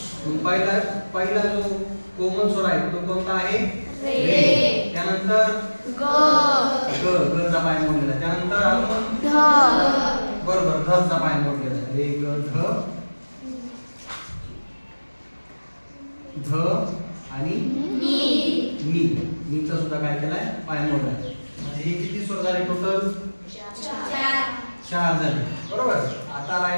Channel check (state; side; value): inverted; both; correlation -1.00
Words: पहिला जो कोमल स्वर आहे तो कोणता आहे, रे. त्यानंतर ग, ग चा पाय मोडलेला. त्यानंतर आपण ध, बरोबर ध चा पाय मोडलेला. रे ग ध, ध आणि नी. नी चा सुद्धा काय केलाय, पाय मोडलाय. म्हणजे हे किती स्वर झाले टोटल, 4 झाले बरोबर. आता